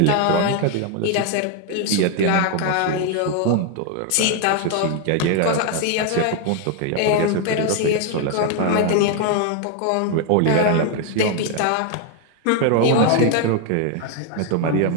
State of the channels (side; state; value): both; different; correlation 0.00